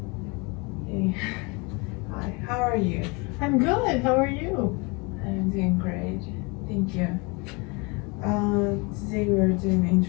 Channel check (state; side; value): quieter; right; 29.1 dB